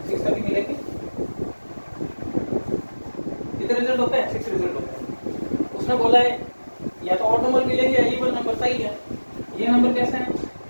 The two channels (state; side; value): inverted; both; correlation -1.00